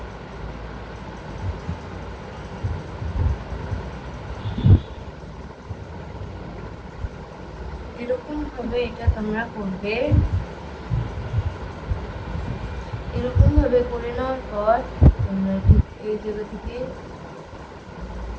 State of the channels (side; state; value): both; identical; correlation 1.00